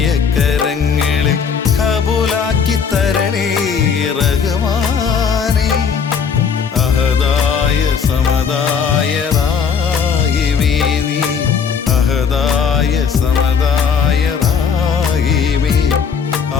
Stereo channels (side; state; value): right; quieter; 6.5 dB